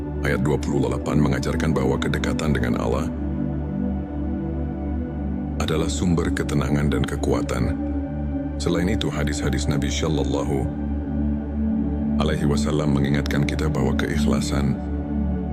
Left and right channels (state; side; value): identical; both; correlation 1.00